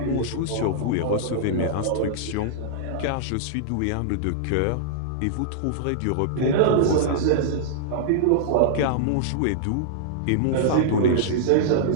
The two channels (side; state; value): both; different; correlation -0.01